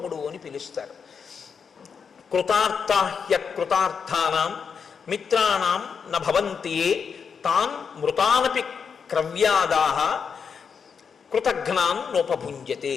అని పిలుస్తారు. కృతార్థాహ్య కృతార్థానాం మిత్రాణం న భవంతి తాన్ మృతానపి క్రవ్యాదాహ కృతఘ్నాన్ నోపభుంజతే.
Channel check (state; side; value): quieter; right; 6.3 dB